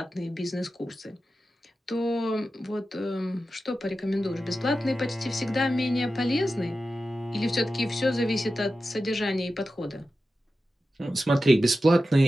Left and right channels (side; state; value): both; normal; correlation 0.92